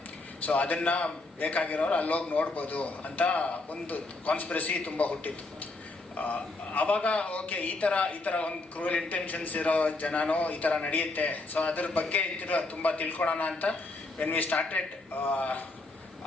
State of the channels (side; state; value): right; quieter; 3.1 dB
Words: ಸೊ ಅದನ್ನು ಬೇಕಾಗಿರೋರು ಅಲ್ಲೋಗಿ ನೋಡ್ಬೋದು ಅಂತ ಒಂದು ಕಾನ್ಸ್ಪಿರಸಿ ತುಂಬ ಹುಟ್ಟಿತ್ತು. ಆವಾಗ ಓಕೆ, ಈ ಥರ ಒಂದು ಕ್ರೂಯಲ್ ಇಂಟೆನ್ಷನ್ಸ್ ಇರೋ ಜನನೂ ಈ ಥರ ನಡೆಯುತ್ತೆ. ಸೊ ಅದ್ರ ಬಗ್ಗೆ ತುಂಬ ತಿಳ್ಕೊಳೋಣ ಅಂತ when we started